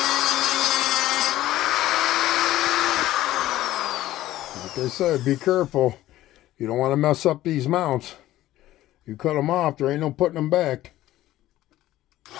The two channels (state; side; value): quieter; right; 14.9 dB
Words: Like I said, be careful. You don't want to mess up these mounts. You cut them off, there ain't no putting them back.